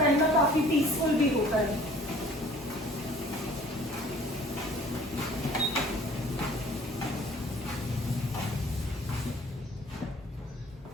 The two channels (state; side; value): normal; both; correlation 0.52